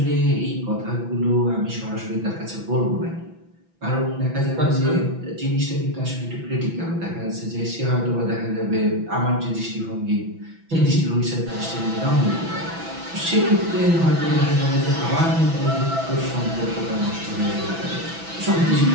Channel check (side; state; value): left; late; 6.0 ms